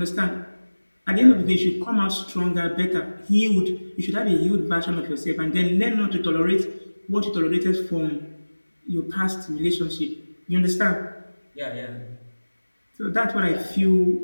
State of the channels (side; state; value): both; inverted; correlation -1.00